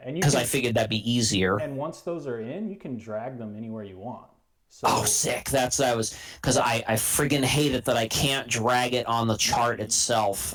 because I figured that'd be easier. And once those are in, you can drag them anywhere you want. So, sick! Because I friggin' hate it that I can't drag it on the chart itself.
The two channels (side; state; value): both; identical; correlation 1.00